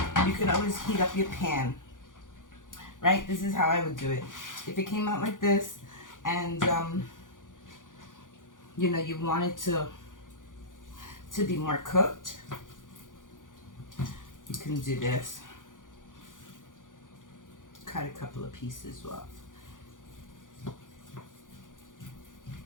You can always heat up your pan, right? This is how I would do it. If it came out like this and, you know, you want it to be more cooked, you can do this. Cut a couple of pieces off.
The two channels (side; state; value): right; late; 0.88 ms